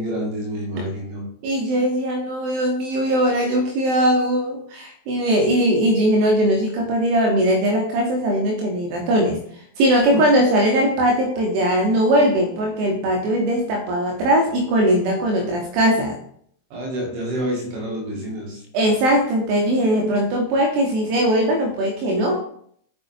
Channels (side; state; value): left; late; 23 ms